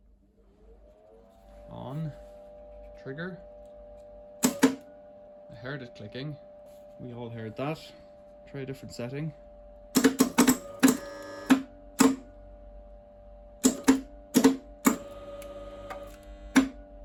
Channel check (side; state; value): both; identical; correlation 1.00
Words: On, trigger. I heard it clicking. We all heard that. Try a different setting. I